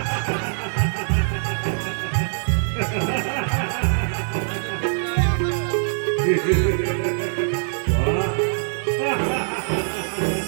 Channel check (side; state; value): left; silent; digital silence